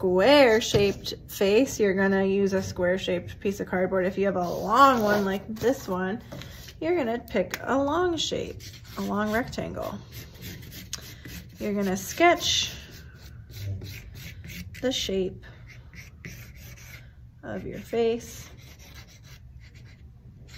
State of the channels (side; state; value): both; identical; correlation 1.00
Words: shaped face, you're gonna use a square shaped piece of cardboard. If you have a long one like this one, you're gonna pick a long shape, a long rectangle. You're gonna sketch the shape of your face